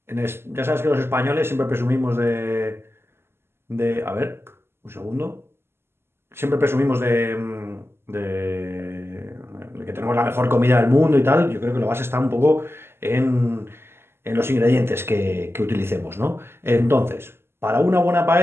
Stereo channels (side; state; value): left; late; 0.12 ms